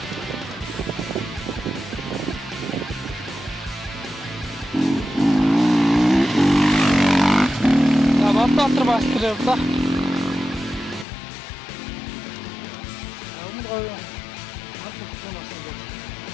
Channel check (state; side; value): drops out; right; at 11.1 s